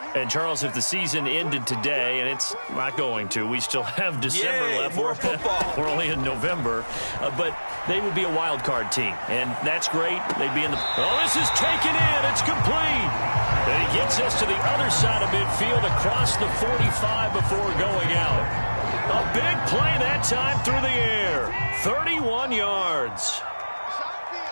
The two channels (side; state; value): both; inverted; correlation -1.00